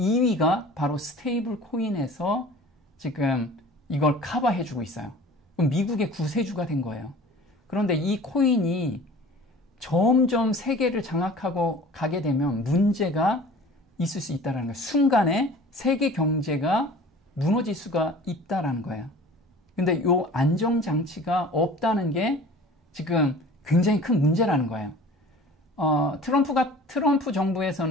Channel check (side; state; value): both; normal; correlation 0.44